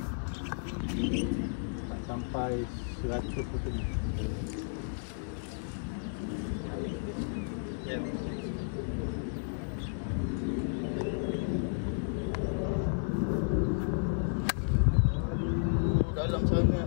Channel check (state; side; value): silent; right; 56 dB below the other